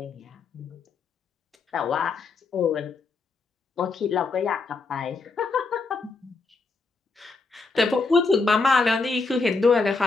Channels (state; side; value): quieter; right; 4.1 dB